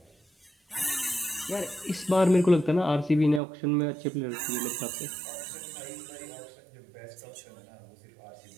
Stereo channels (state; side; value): drops out; left; at 3.4 s